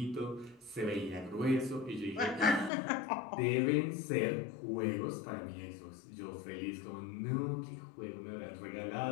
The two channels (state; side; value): drops out; right; at 2.7 s